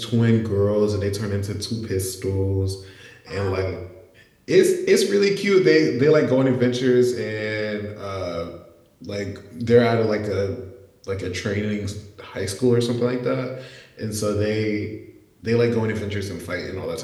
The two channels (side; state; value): both; identical; correlation 1.00